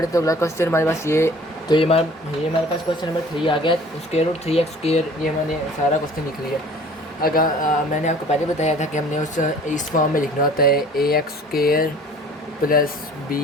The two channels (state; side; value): normal; both; correlation 0.49